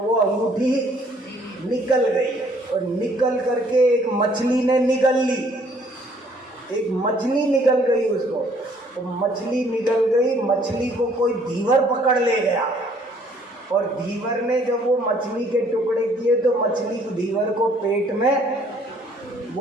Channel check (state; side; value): normal; both; correlation 0.61